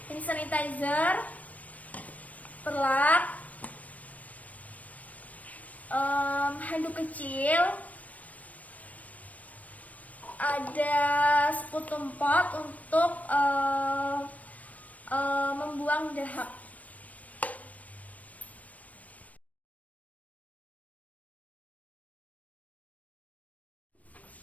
hand sanitizer, perlak, handuk kecil, ada sputum pot untuk membuang dahak.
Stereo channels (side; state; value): right; late; 0.070 ms